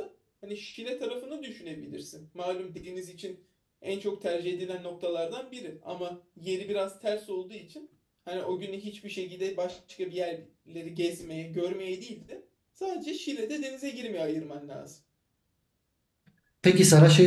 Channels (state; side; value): identical; both; correlation 1.00